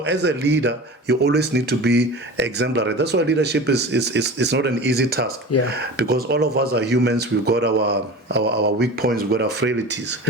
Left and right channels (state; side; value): normal; both; correlation 0.34